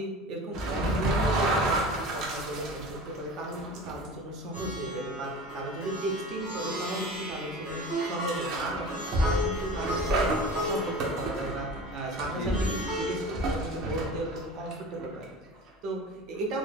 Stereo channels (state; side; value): normal; both; correlation 0.36